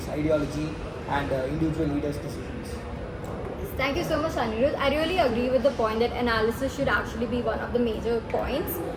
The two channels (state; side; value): identical; both; correlation 1.00